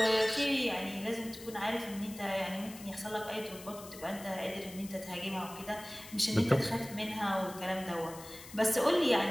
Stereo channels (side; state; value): left; noise; hiss, 16 dB below the sound